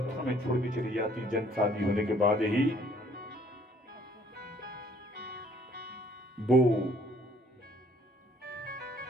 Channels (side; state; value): both; normal; correlation 0.60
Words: में छोड़ के चली जाती, जन शादी होने के बाद ही, वो